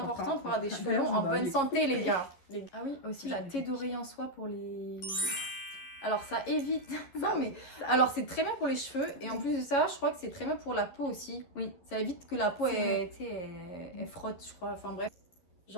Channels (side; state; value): right; late; 11 ms